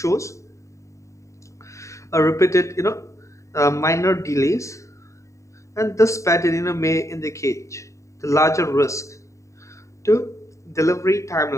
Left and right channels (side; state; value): right; late; 0.15 ms